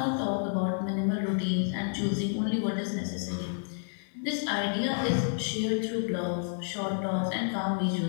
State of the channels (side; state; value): right; silent; 58 dB below the other